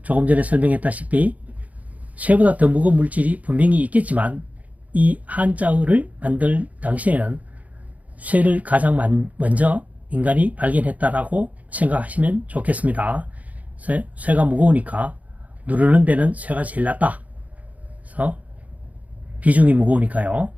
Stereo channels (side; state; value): left; late; 0.071 ms